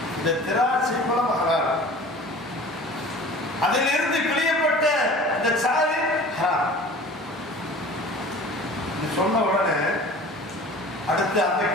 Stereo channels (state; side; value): normal; both; correlation 0.42